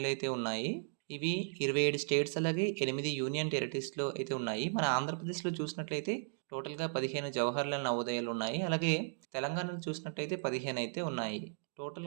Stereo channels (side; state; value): left; silent; digital silence